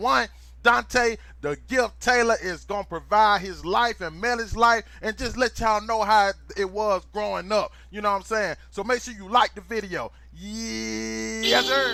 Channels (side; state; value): both; identical; correlation 1.00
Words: Dante the Gift Taylor is gonna provide his life and Melly's life and just let y'all know how it was growing up. You know what I'm saying? So make sure you like the video. Yes,